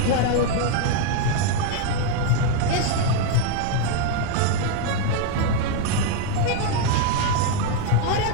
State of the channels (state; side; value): different; both; correlation 0.01